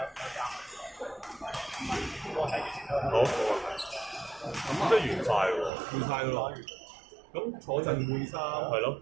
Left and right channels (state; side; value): drops out; left; at 5.7 s